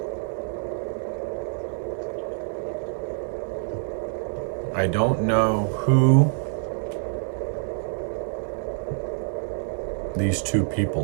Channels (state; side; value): silent; left; digital silence